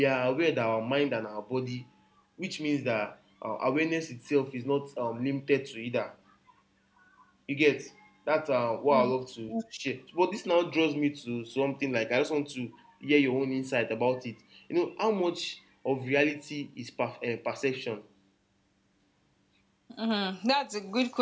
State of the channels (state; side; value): identical; both; correlation 1.00